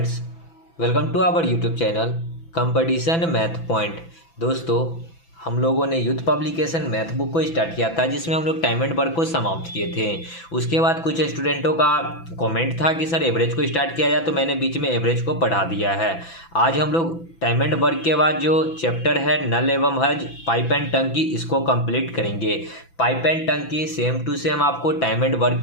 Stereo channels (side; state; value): right; late; 6.0 ms